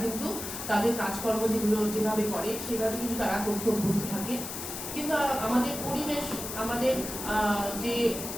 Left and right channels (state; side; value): noise; left; hiss, 7 dB below the sound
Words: কিন্তু তাদের কাজকর্ম যেগুলো যেভাবে করে সেভাবে কিন্তু তারা করতে অভ্যস্ত থাকে। কিন্তু আমাদের পরিবেশ, আমাদের যে